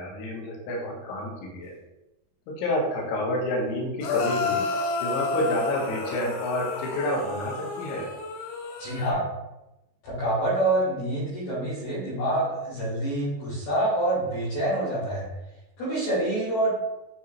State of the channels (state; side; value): late; right; 22 ms